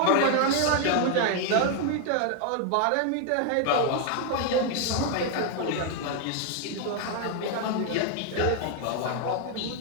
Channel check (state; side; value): different; both; correlation 0.01